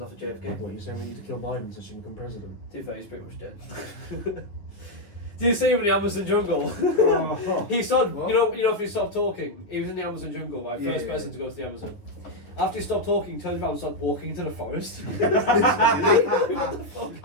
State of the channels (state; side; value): late; right; 9.9 ms